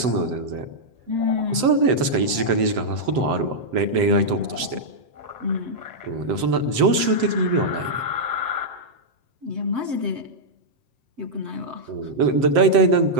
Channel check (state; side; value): late; left; 7.8 ms